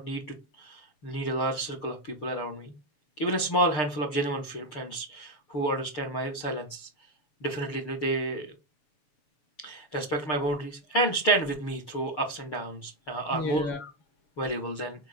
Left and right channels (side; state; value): right; late; 6.7 ms